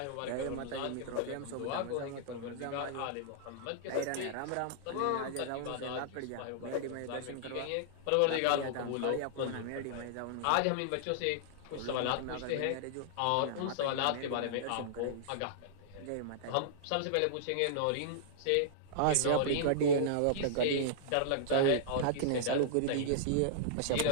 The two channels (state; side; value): different; both; correlation -0.02